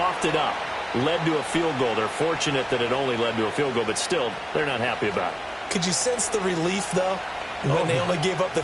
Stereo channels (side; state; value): both; identical; correlation 1.00